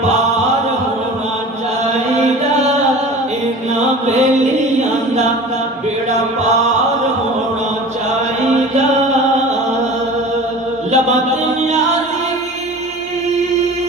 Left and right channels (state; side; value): normal; both; correlation 0.39